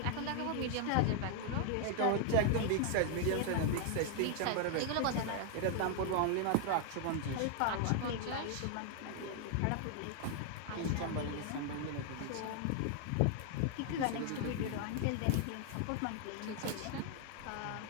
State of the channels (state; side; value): different; both; correlation 0.00